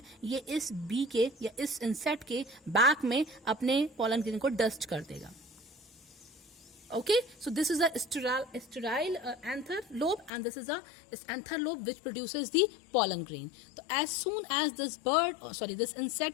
ये इस बी के या इस इंसेक्ट के बैक में अपने पॉलन ग्रेन को डस्ट कर देगा. Okay, so this is a sterile anther lobe, and this is a anther lobe which produces the pollen grain. So as soon as this this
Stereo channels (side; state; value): right; drops out; at 10.3 s